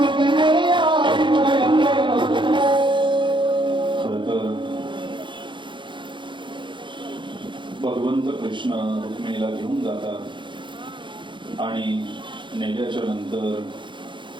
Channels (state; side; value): late; left; 0.23 ms